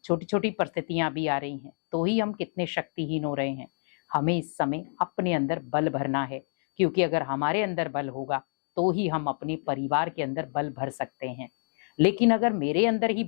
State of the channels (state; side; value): silent; right; digital silence